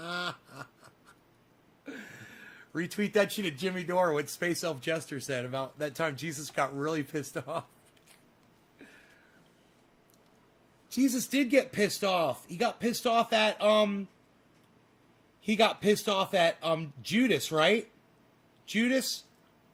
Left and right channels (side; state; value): both; identical; correlation 1.00